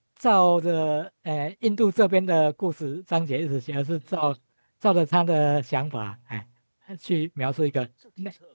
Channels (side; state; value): both; inverted; correlation -1.00